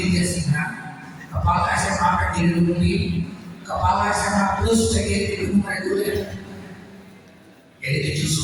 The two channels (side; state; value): both; identical; correlation 1.00